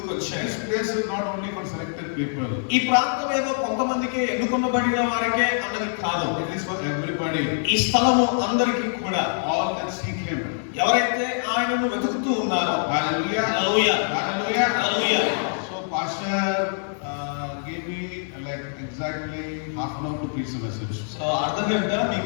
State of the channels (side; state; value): right; silent; digital silence